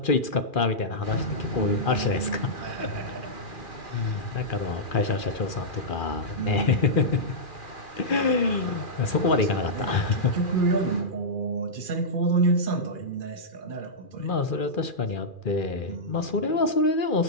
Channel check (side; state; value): right; late; 2.4 ms